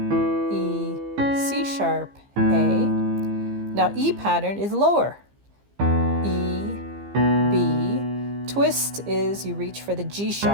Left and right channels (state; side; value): late; left; 15 ms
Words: E, C sharp, A. Now E pattern is lower, E, B. Twist is you reach for the G